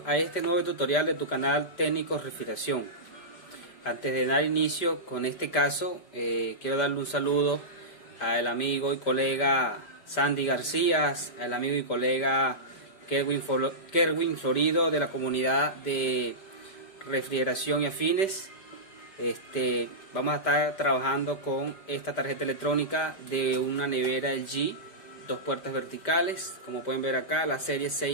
a este nuevo tutorial de tu canal Técnicos Refrigeración. Antes de dar inicio con este caso, quiero darle un saludo al amigo y colega Sandy García, al amigo y colega Kerwin Florido de la comunidad de refrigeración y afines. Vamos a estar trabajando con esta tarjeta electrónica de una nevera LG, 2 puertas verticales, como pueden ver acá, la serie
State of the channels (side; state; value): right; late; 5.1 ms